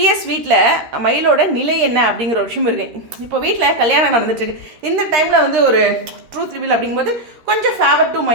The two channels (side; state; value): left; late; 13 ms